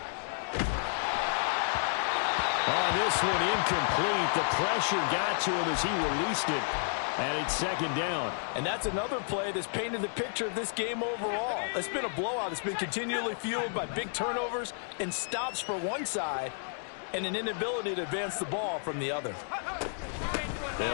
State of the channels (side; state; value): right; silent; digital silence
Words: On this one, incomplete. The pressure got to him as he released it. And it's 2nd down. And that's another play that's painted the picture of this game overall. It's been a blowout. It's been continually fueled by big turnovers and stops for one side. and an inability to advance the ball from the other.